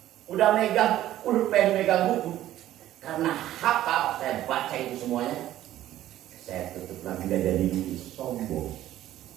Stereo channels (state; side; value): quieter; left; 13.4 dB